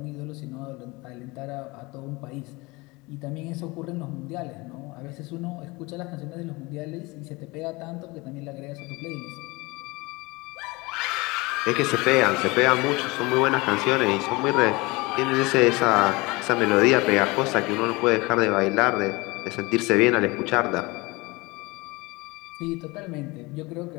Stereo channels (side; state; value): right; quieter; 24.0 dB